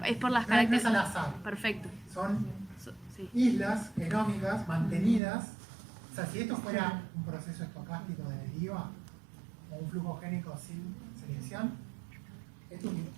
es por las No es características. al azar. Perfecto. Son Sí. islas genómicas mantenidas. O sea, si esto fuera un proceso estocástico de deriva o un flujo génico sin selección, esto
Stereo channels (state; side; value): drops out; left; at 5.2 s